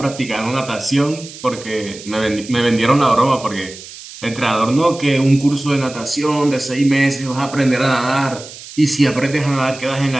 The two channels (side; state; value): right; noise; hiss, 15 dB below the sound